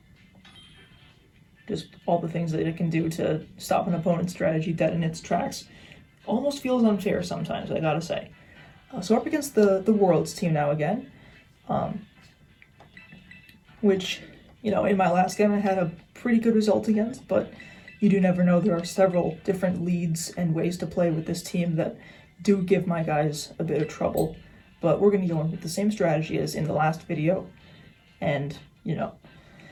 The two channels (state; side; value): identical; both; correlation 1.00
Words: Just all the things that it can do to stop an opponent's strategy dead in its tracks. Almost feels unfair sometimes, I gotta say. So up against the Worlds team now again. Which, you know, in my last game I had a pretty good result against, but you do never know. There are several different leads and ways to play with this team that do give my guys a bit of trouble. But we're going to go in with the same strategy as in the last video. And, you know,